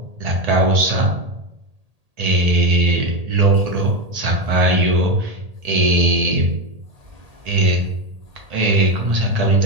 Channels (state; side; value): late; left; 1.8 ms